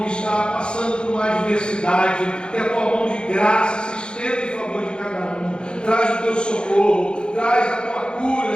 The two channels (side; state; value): right; late; 0.051 ms